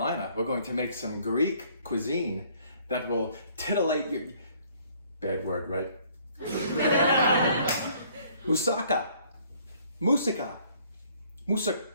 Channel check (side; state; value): both; inverted; correlation -0.61